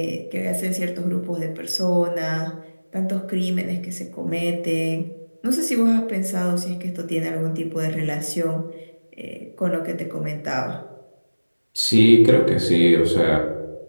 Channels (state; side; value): inverted; both; correlation -1.00